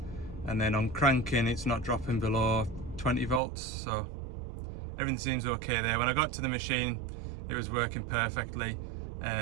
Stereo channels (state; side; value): drops out; left; at 3.4 s